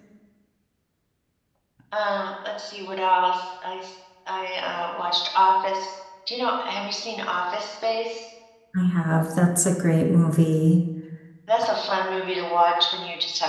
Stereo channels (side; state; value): both; identical; correlation 1.00